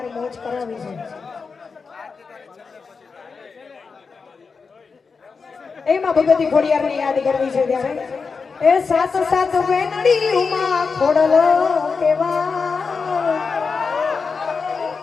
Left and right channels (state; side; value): quieter; right; 5.0 dB